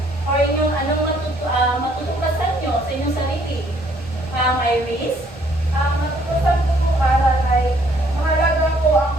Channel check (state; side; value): normal; both; correlation 0.64